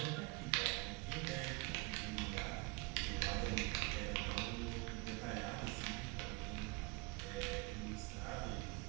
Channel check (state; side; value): quieter; left; 24.6 dB